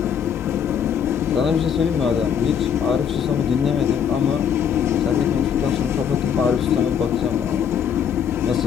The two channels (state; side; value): quieter; right; 7.9 dB